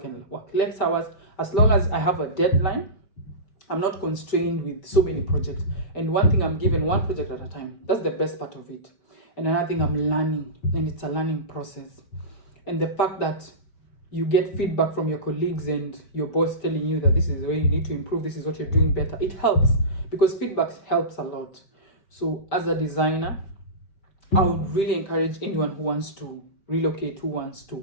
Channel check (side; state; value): right; late; 5.1 ms